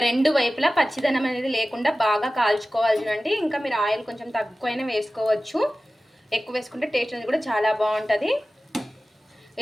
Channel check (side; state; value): both; normal; correlation 0.96